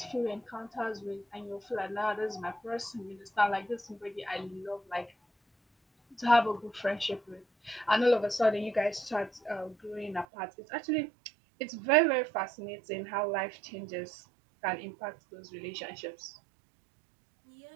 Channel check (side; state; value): left; drops out; at 10.2 s